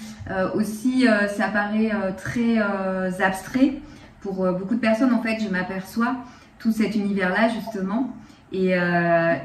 Aussi, ça paraît très abstrait. Pour beaucoup de personnes, en fait, je m'aperçois tout cet univers-là, justement. Et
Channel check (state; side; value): identical; both; correlation 1.00